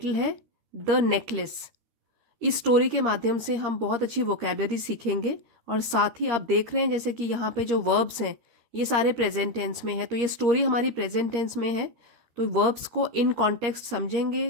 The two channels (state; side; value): late; left; 13 ms